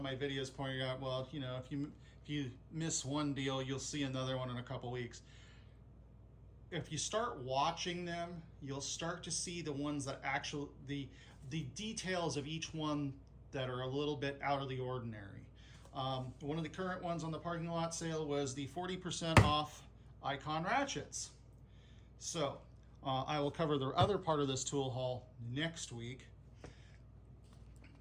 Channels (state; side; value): identical; both; correlation 1.00